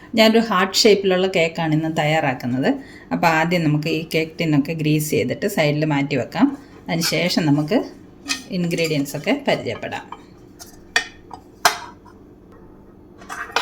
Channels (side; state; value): both; identical; correlation 1.00